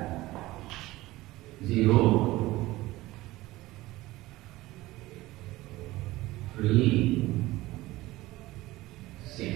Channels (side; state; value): left; quieter; 18.3 dB